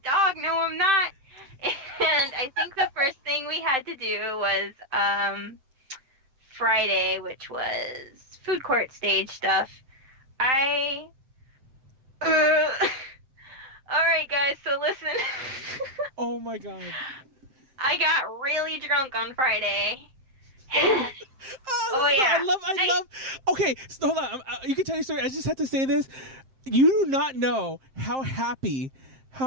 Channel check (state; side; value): late; left; 7.5 ms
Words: dog? No, I'm not. And I think the first thing we had to do was Friday, which was food court stage stuff. Alright guys, so listen. Oh my god. I got really drunk on Friday. Yeah. I love. Okay, so hold on. You can tell your story. I just have to say this. You do not know how happy,